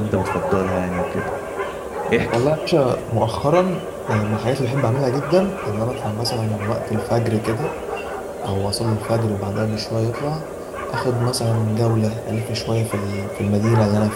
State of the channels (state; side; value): identical; both; correlation 1.00